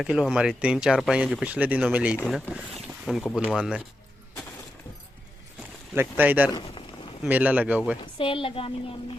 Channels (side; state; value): both; normal; correlation 0.88